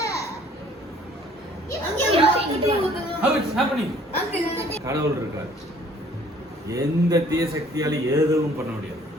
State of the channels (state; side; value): normal; both; correlation 0.56